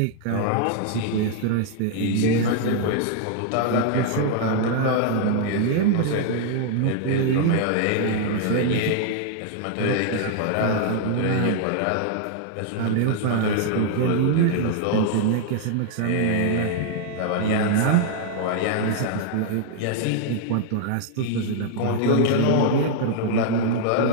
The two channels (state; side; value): different; both; correlation -0.01